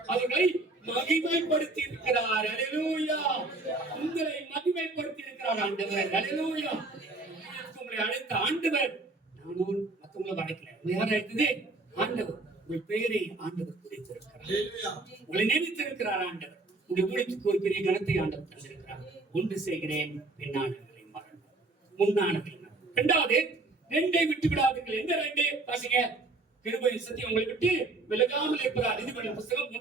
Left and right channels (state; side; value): quieter; left; 3.3 dB